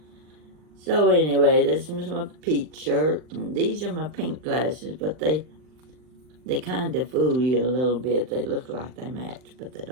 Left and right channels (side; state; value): left; late; 39 ms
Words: So anyway, this is my peach shirt, and these are my pink glasses, but they kind of fool you a little bit. They look like they match, but they